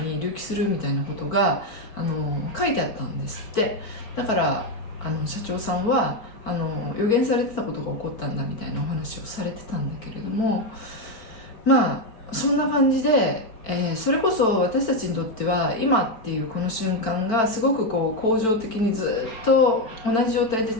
隆起するみたいなことが書いてあったんですって。だから社長さんは予言されてたことが起こったんだみたいなお話をされてたんだけれども、そんな感じで、それこそ私たちにとっては今っていうこの瞬間がすごく恒常的にずっと同じ状態で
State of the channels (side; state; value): right; late; 4.4 ms